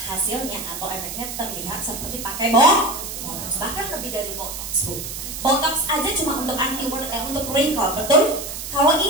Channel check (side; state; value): right; noise; hiss, 7 dB below the sound